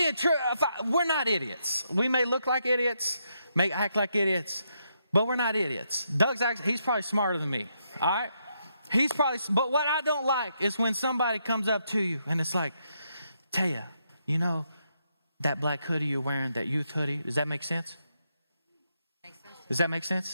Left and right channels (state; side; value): inverted; both; correlation -0.78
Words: true, we're not idiots. We may look like idiots, may act like idiots, but we're not idiots. He's probably smarter than me. All right? But what I don't like is when somebody comes up to you and it's like, Taya, you know, that black hoodie you're wearing, that youth hoodie, does that make sense? Does that make